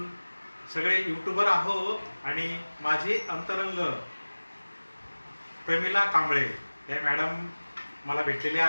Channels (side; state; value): both; inverted; correlation -1.00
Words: सगळे यूट्यूबर आहोत आणि माझे अंतरंग प्रमिला कांबळे या मॅडम मला भेटलेल्या